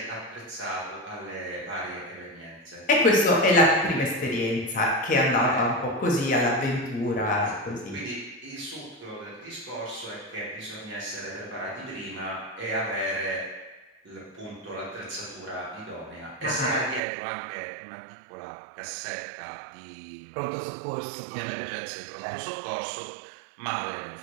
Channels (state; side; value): drops out; left; at 17.0 s